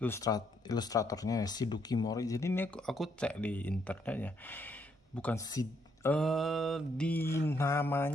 ilustratornya Shiduki Mori. Jadi ini aku cek di internetnya, bukan di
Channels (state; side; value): normal; both; correlation 0.73